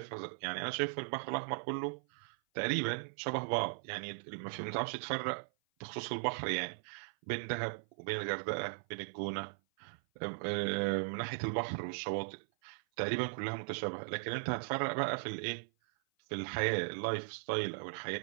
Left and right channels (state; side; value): silent; left; 52 dB below the other